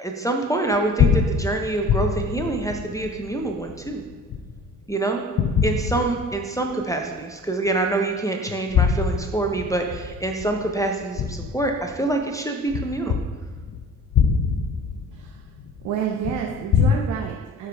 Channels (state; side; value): normal; both; correlation 0.44